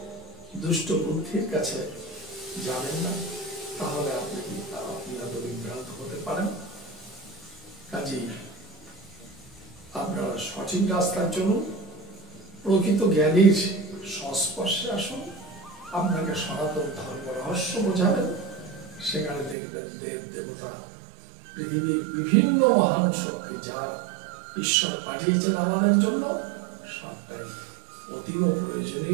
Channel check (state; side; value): drops out; left; at 19.6 s